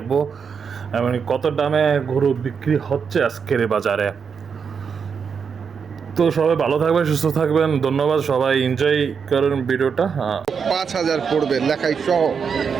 এবং কত দামে গরু বিক্রি হচ্ছে আজকের এই বাজারে। তো সবাই ভালো থাকবেন, সুস্থ থাকবেন। ধন্যবাদ, সবাই এনজয় করেন ভিডিওটা। 5,000 পড়বে লেখাই সহ।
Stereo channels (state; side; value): quieter; left; 6.3 dB